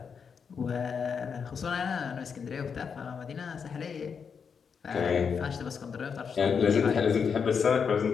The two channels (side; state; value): right; quieter; 6.3 dB